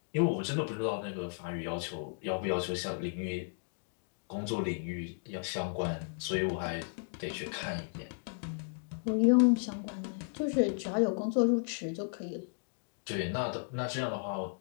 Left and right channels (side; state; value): right; silent; digital silence